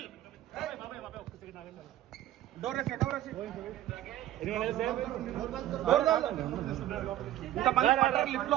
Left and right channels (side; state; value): left; quieter; 13.2 dB